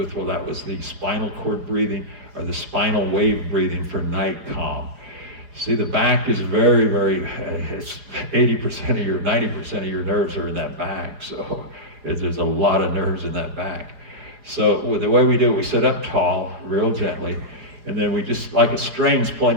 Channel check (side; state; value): left; late; 4.9 ms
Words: Well, that was the spinal cord breathing, or the spinal wave breathing for night calm. See, the back is very, very, it's 80% of your, 90% of your nerves are in that back. So there's a lot of nerves in that back. So the way we do it, we sit up tall, real gently, and then we just, like a string's